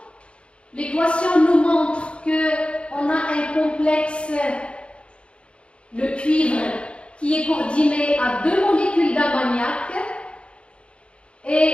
L'équation nous montre qu'on a un complexe, le cuivre, qui est coordonné à 2 molécules d'ammoniac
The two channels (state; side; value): late; right; 0.058 ms